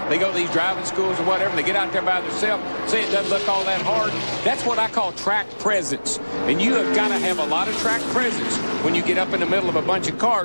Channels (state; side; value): inverted; both; correlation -1.00